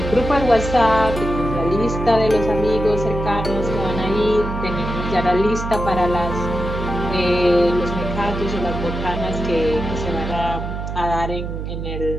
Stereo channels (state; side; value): noise; right; hum, 5 dB below the sound